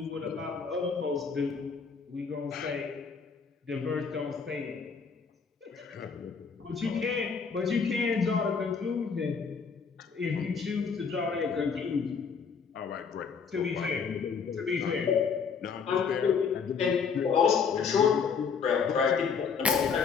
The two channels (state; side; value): quieter; right; 5.9 dB